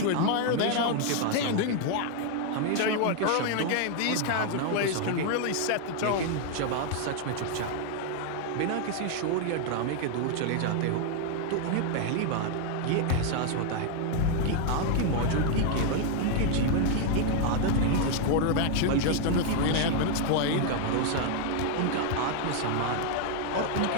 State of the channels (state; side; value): different; both; correlation 0.00